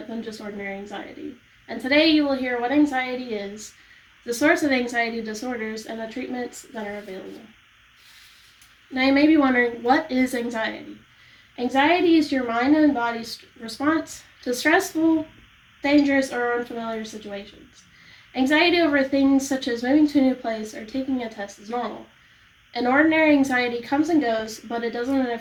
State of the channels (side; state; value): both; identical; correlation 1.00